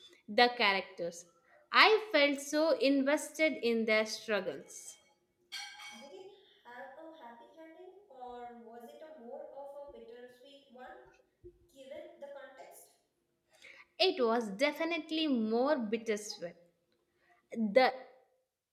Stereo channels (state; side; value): identical; both; correlation 1.00